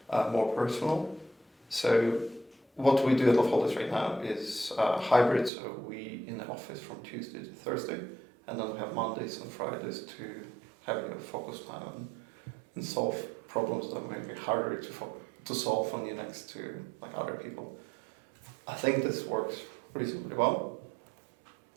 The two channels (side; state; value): left; drops out; at 5.5 s